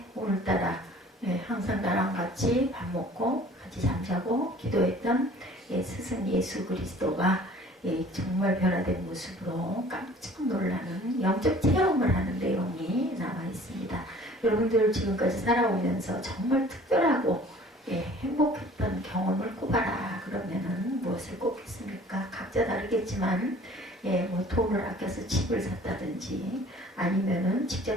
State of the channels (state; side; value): normal; both; correlation 0.50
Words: 오늘따라 예, 항상 나랑 같이 밥 먹고 같이 잠자고 기도했던 예, 스승 예수 그리스도가 예, 정말 변화된 모습으로 깜짝 놀라는 영적 체험을 하는 내용이 나와 있습니다. 여러분들 지금까지 살아오면서 정말 특별하고 예, 행복했던 경험을 꼽아라 그러면은 무엇을 꼽겠습니까? 각자 다르겠지만 예, 뭐 돈을 아껴서 집을 샀다든지 아니면은